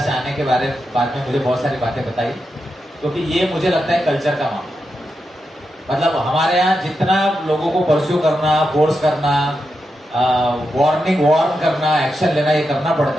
आने के बाद में मुझे बहुत सारी बातें बताई, क्योंकि ये मुझे लगता है कल्चर का मामला। मतलब हमारे यहाँ जितना लोगों को परस्यू करना, फोर्स करना, वार्न करना, एक्शन लेना, ये करना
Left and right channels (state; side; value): normal; both; correlation 0.87